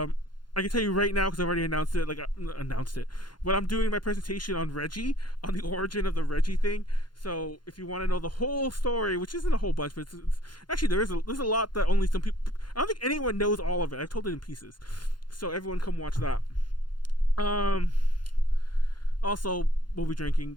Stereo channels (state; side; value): late; right; 0.71 ms